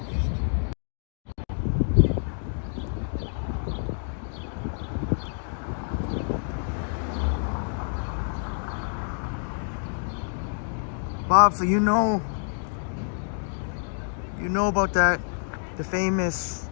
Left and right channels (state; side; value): silent; right; digital silence